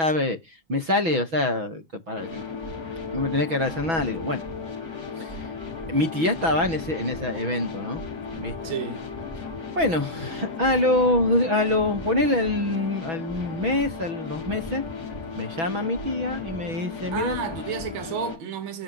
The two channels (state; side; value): late; left; 6.1 ms